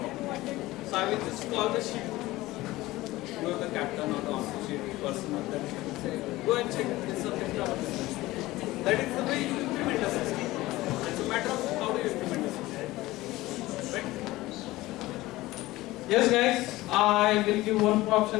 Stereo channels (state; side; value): quieter; right; 18.3 dB